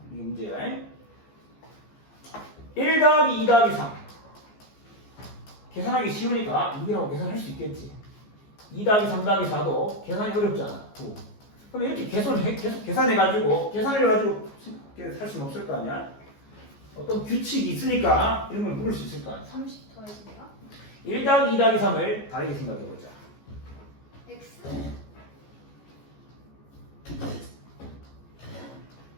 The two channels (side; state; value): right; late; 14 ms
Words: 이게 문제야. 1 더하기 2 더하기 3. 계산하기 쉬우니까 6이라고 계산할 수 있겠지. 2 더하기 3 더하기 4도 계산이 어렵잖아. 9. 그럼 이렇게 계속 계산해가지고 계산해가지고 할 수는 없을 거 아니야? 어떤 규칙이 있으니까 이런 걸 물을 수 있을 거 아니야? 30 더해집니다. 1 더하기 2 더하기 3을 다르게 생각해보자. X.